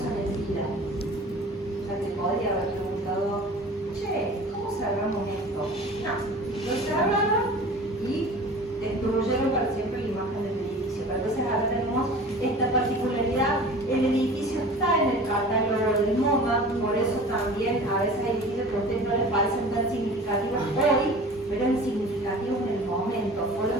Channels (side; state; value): both; normal; correlation 0.41